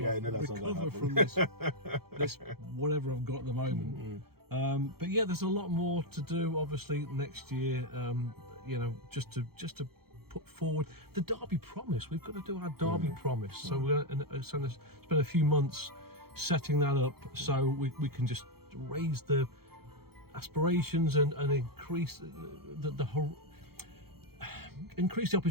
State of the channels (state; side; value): late; left; 0.95 ms